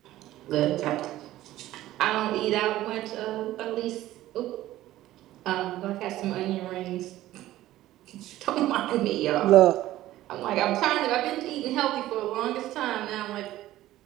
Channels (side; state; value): left; quieter; 15.0 dB